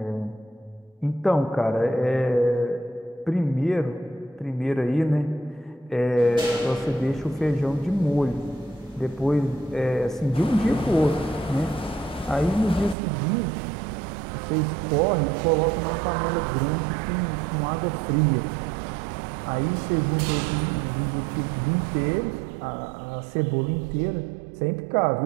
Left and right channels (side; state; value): left; drops out; at 13.0 s